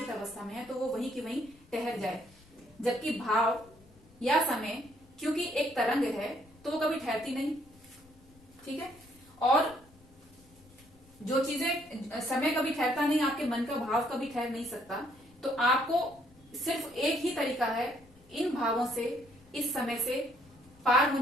अवस्था में है, तो वो वहीं की वहीं ठहर जाए। जबकि भाव या समय क्योंकि एक तरंग है तो वो कभी ठहरती नहीं। ठीक है, और जो चीजें समय कभी ठहरता नहीं, आपके मन का भाव कभी ठहर नहीं सकता। तो आपको सिर्फ एक ही तरीका है इन भावों से, इस समय से पार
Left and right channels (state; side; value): noise; left; rumble, 27 dB below the sound